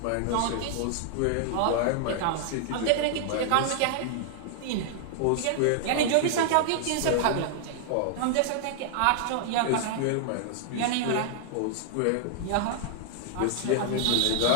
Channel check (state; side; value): different; both; correlation -0.01